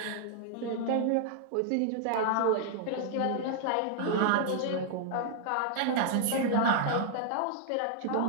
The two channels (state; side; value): different; both; correlation -0.01